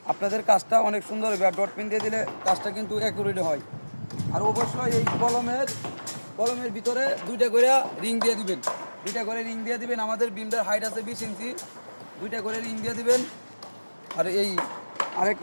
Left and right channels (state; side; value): inverted; both; correlation -1.00